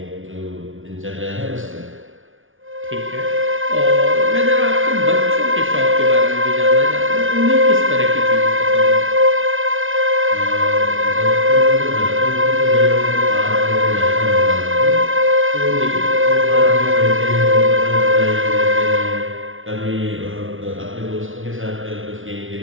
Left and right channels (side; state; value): left; late; 0.58 ms